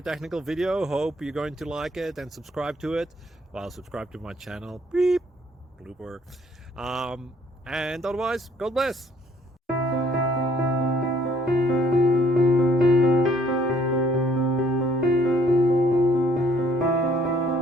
technical video. Hope you're going to like it and subscribe to it. Well, subscribe to my channel. Beep. Blooper. And otherwise, God bless.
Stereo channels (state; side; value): normal; both; correlation 0.63